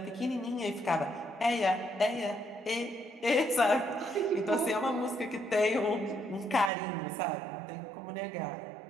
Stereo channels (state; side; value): drops out; left; at 6.7 s